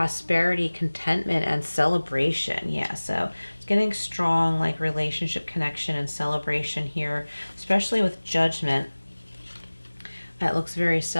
contentment, and celebration. Yeah, so it's getting strong, like relationship connection and celebration here, especially with Judgment. It looks very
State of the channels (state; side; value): inverted; both; correlation -1.00